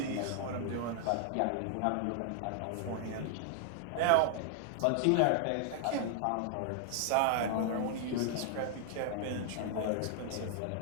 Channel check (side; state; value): both; different; correlation 0.00